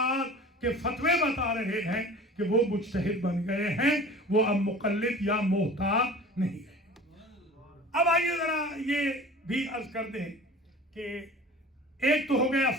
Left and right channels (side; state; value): both; normal; correlation 0.41